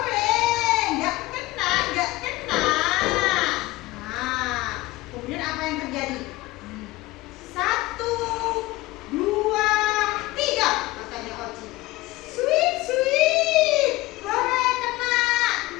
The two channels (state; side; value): quieter; right; 19.2 dB